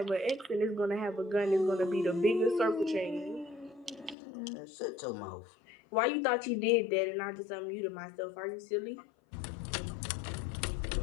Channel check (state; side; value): drops out; right; at 4.2 s